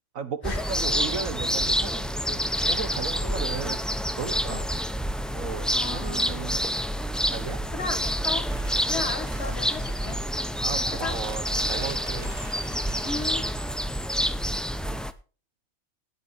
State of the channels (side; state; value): both; normal; correlation 0.56